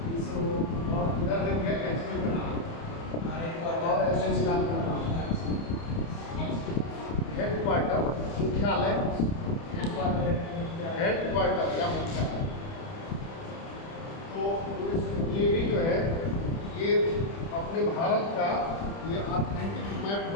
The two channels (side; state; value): right; late; 30 ms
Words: और इधर लिख गया HQ का नाम और एसोसिएशन का नाम, हेडक्वार्टर मुख्यालय, हेडक्वार्टर या मुख्यालय। तो ये भी जो है ये अपने भारत का ये ऑथेंटिक मैप